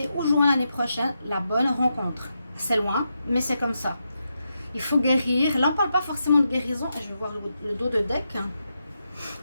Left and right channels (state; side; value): inverted; both; correlation -0.85